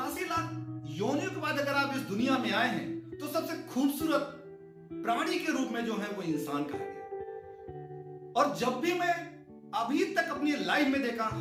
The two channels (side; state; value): both; identical; correlation 1.00